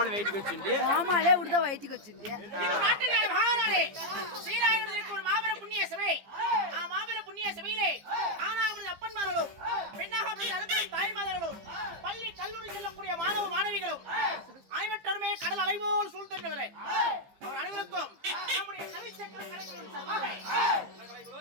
வயிற்றுக்கு வச்சுட்டு கோமாளே விடுதா வயிற்றுக்கு வச்சுட்டு நாட்டுக்கார மகாராணி ஸ்ரீராயனுக்கு ஒரு மாபெரும் புண்ணிய சபை. மாபெரும் புண்ணிய சபையிலே ஆனாவது அப்பன்மார்களும் பெண்ணாக அருகில் தாய்மார்களும் பள்ளி கல்லூரி செல்லக்கூடிய மாணவ மாணவிகளும் அனைவருமே கடல் அலைபோல் சூழ்ந்தவர்களே அவர் அனைவருக்கும் நம்முடைய கவிச்சக்கர கலைஞர்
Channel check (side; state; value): left; late; 15 ms